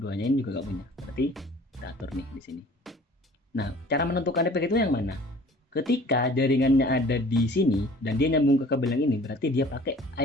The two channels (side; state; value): both; normal; correlation 0.49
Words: ini juga enggak punya. Berarti kita atur nih di sini. Nah, cara menentukan IP gateway yang mana? Ketika jaringannya ada di sini dan dia nyambung ke kabel yang ini, berarti dia pakai